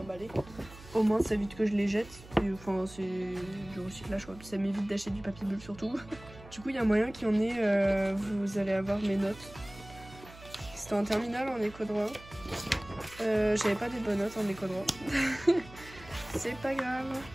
Au moins ça évite que je les jette. Et, enfin c'est du recyclage quoi. Ça m'évite d'acheter du papier bulle surtout. Du coup il y a moyen qu'il y en ait, vous allez avoir mes notes. C'était en terminale en éco droit. J'avais pas des bonnes notes en éco droit. C'est pas grave.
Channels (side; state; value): right; noise; hum, 19 dB below the sound